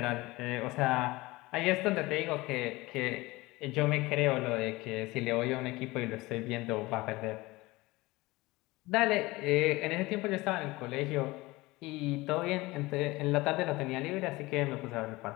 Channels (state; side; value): quieter; right; 20.9 dB